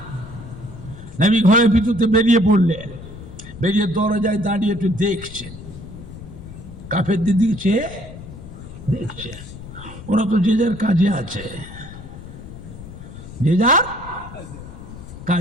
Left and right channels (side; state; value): left; noise; rumble, 14 dB below the sound